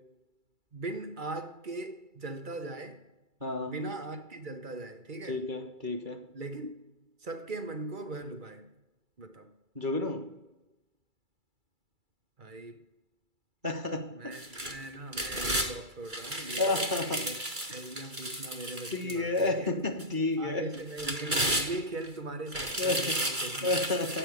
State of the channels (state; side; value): late; left; 2.3 ms